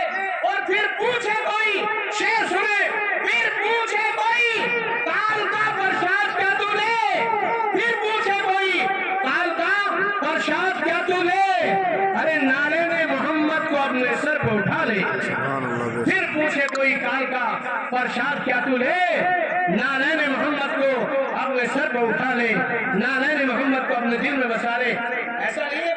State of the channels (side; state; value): both; identical; correlation 1.00